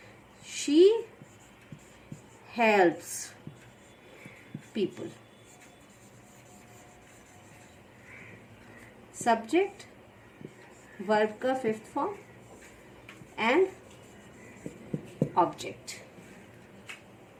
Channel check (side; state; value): both; identical; correlation 1.00